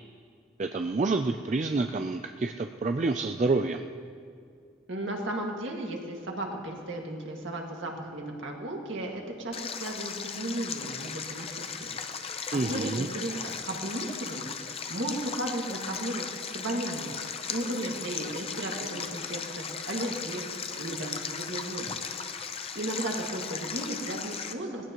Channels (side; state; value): both; normal; correlation 0.43